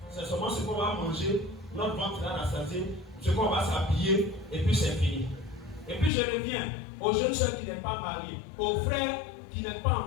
c'est seulement ce qu'on va manger, notre ventre va rassasier, ce qu'on va s'habiller, et puis c'est fini. Et puis je reviens aux jeunes soeurs qui n'êtes pas mariés, aux frères qui n'êtes pas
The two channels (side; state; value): right; drops out; at 6.1 s